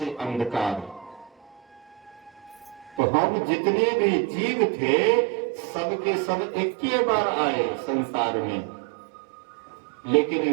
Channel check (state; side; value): drops out; left; at 3.0 s